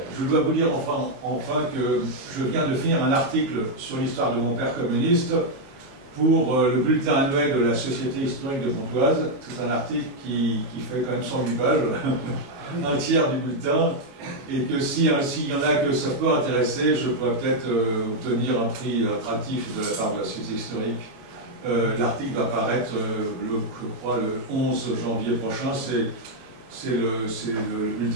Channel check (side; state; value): left; late; 22 ms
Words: Je dois vous dire enfin que je viens de finir un article sur l'histoire de mon père communiste pour le bulletin annuel de la Société historique de Pontoise. C'est un article qui fait quand même 108 pages, un tiers du bulletin, et que s'il y en a que ça peut intéresser, je pourrais peut-être obtenir un prix attractif de la part de la Société historique. L'article va paraître, je crois, le 11 janvier prochain. C'est le